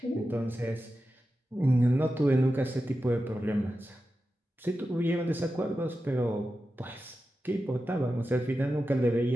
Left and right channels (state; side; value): normal; both; correlation 0.92